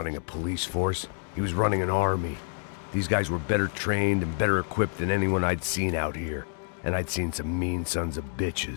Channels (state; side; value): silent; right; 57 dB below the other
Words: a police force. He was running an army. These guys were better trained and better equipped than anyone I'd seen out here. And I'd seen some mean sons of